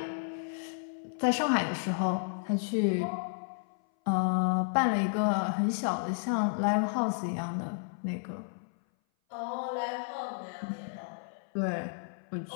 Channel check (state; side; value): silent; right; 56 dB below the other